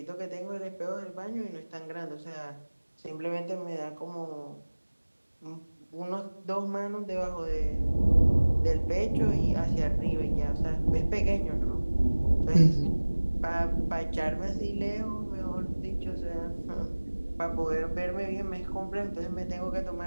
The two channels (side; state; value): both; inverted; correlation -1.00